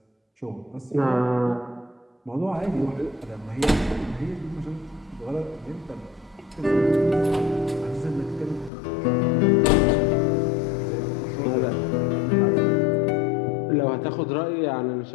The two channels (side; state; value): right; drops out; at 8.7 s